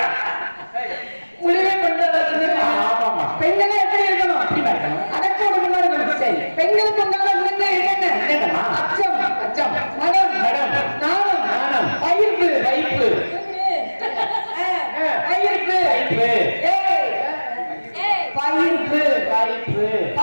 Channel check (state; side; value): inverted; both; correlation -1.00